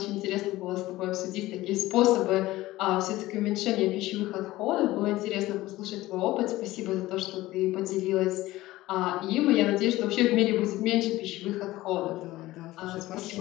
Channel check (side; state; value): right; quieter; 17.3 dB